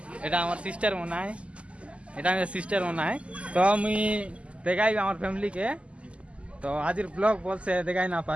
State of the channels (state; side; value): late; left; 0.058 ms